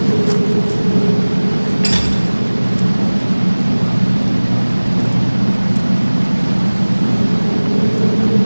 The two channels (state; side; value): inverted; both; correlation -1.00